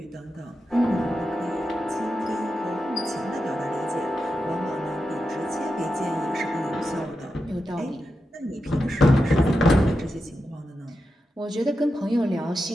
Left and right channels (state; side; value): normal; both; correlation 0.89